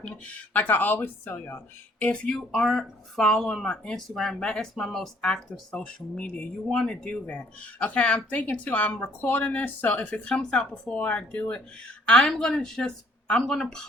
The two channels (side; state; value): both; normal; correlation 0.61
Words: Like I always tell y'all, if you aren't following my Instagram, that is my most active social media. You want to do that, okay? I'm thinking too. I'm recording this, so if it comes out before I do it, I'm gonna